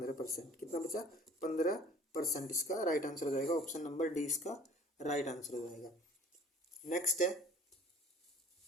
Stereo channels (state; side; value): normal; both; correlation 0.50